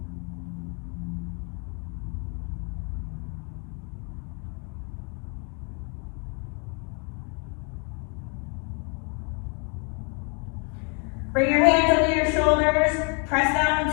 Bring your hands under your shoulders. Press down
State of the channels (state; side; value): quieter; right; 35.8 dB